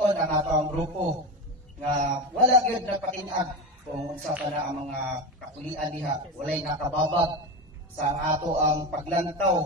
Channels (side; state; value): both; normal; correlation 0.20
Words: ang ato ang grupo nga wala gyud napatinag kung unsa pa na ang mga kapulian diha, walay nakababag sa ato ang